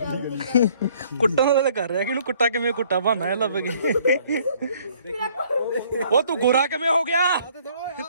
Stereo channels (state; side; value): inverted; both; correlation -0.61